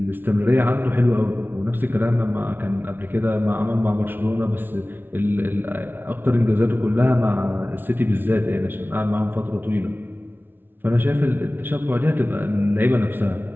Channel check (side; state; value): left; late; 0.10 ms